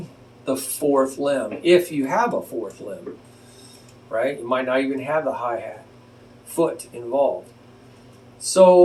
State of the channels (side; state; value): both; identical; correlation 1.00